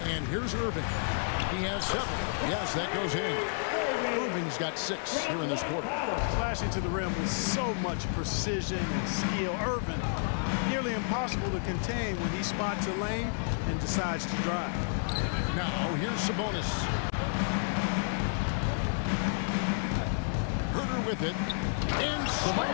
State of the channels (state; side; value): silent; right; 57 dB below the other